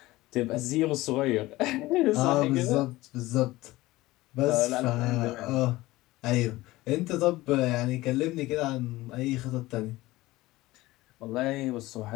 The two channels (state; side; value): quieter; right; 18.6 dB